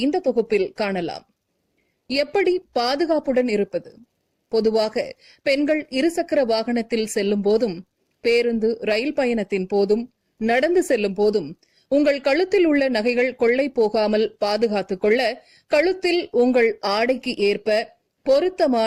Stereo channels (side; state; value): both; identical; correlation 1.00